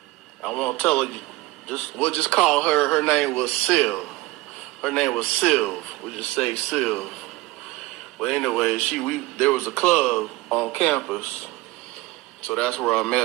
I want to tell her, we'll just call her, her name was Sylv. Her name was Sylv. We'll just say Sylv. But anyway, there was a club on campus, so that's where I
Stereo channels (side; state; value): left; quieter; 19.6 dB